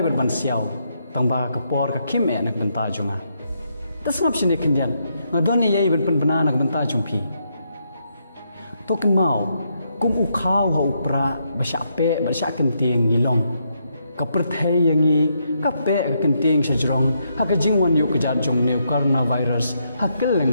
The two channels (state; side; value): inverted; both; correlation -0.78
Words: berban siau. Tangba kapor ka kim nak benta junga. Tasngap sini kendian. Ngadone yai ben bena nak benta jumpi. Token mau kum ukau ha upra basyape basyak kenting ngilong. Kaperthai yangi kape kenting sejrong hakajing wan yu kejat jong new coronavirus